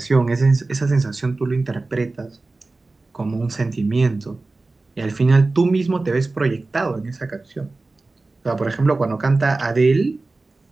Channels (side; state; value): left; quieter; 3.4 dB